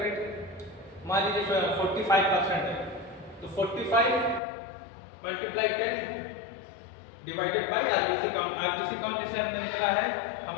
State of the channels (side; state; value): right; drops out; at 4.4 s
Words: मान लीजिए 45% है, तो 45 multiply 10 divided by RBC count. RBC count जैसे हमने लिखा है,